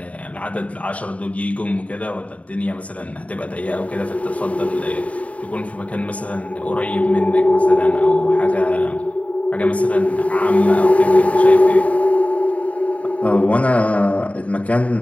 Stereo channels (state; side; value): late; right; 0.067 ms